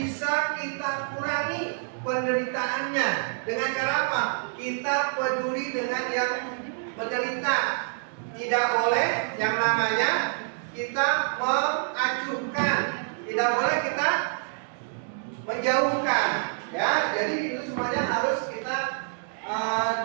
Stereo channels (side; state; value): left; silent; digital silence